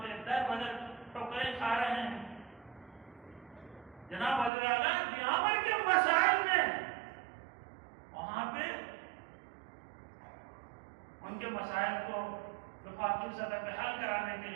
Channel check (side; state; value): left; drops out; at 4.5 s